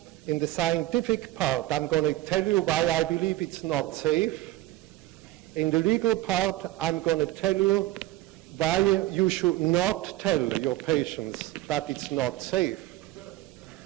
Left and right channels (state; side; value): quieter; left; 16.6 dB